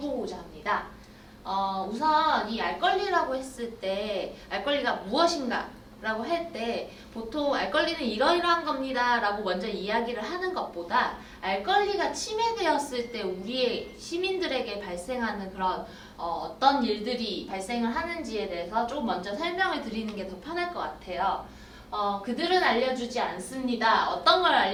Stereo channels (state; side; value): identical; both; correlation 1.00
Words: 합니다. 우선 이 알권리라고 했을 때 알권리가 무엇인가? 라고 할 때 보통 알권리는 이러이러한 겁니다 라고 먼저 이야기를 하는 것보다 알권리가 침해되었을 때 우리의 시민들에게 발생하는 그런 어떤 일들이 발생을 하는지에 대해서 조금 먼저 설명을 드리는 게 더 편할 것 같아요. 그들은 알려주지 않습니다. 어떤 걸